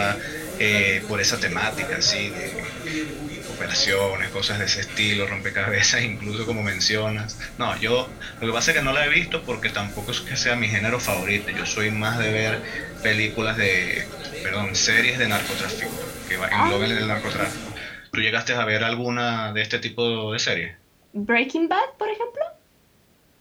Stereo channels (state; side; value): identical; both; correlation 1.00